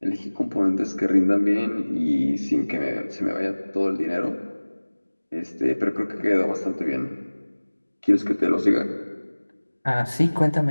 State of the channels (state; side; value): inverted; both; correlation -1.00